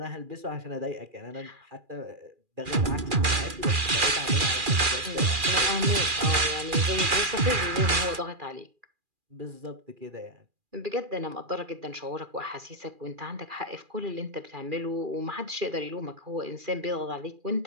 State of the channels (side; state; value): left; late; 2.4 ms